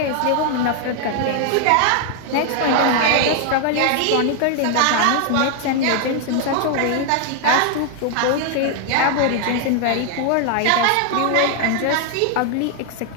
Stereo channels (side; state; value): both; different; correlation 0.00